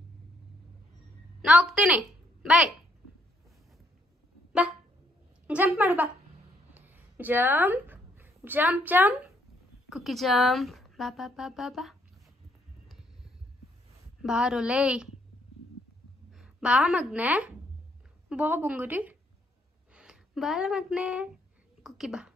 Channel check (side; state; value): both; normal; correlation 0.70